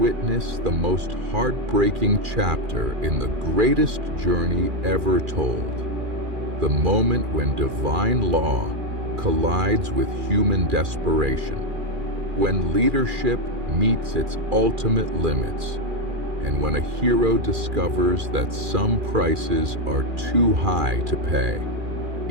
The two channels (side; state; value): left; late; 2.4 ms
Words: the most heartbreaking chapter in the greatest journey ever told. The moment when divine law collides with human desperation, when leadership meets its ultimate limits, and when a hero discovers that some prices are too high to pay,